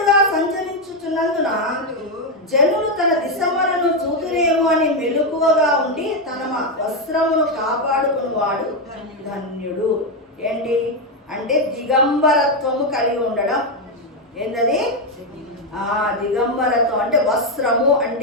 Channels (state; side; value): normal; both; correlation 0.05